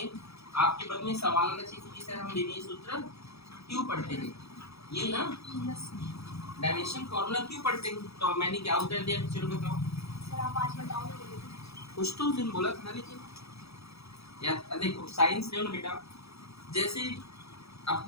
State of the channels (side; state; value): right; late; 0.78 ms